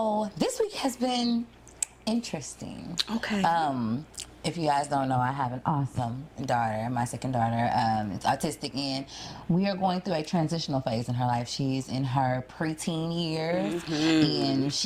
this week has been interesting. Okay. If you guys don't know, I have an awesome daughter, my second daughter. It's autistic, and we are going through a transitional phase in her life. She's in her preteen years, and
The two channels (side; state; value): both; identical; correlation 1.00